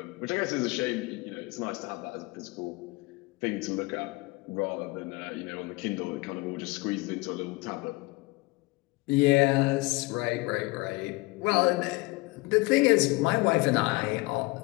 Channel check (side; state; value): right; quieter; 23.6 dB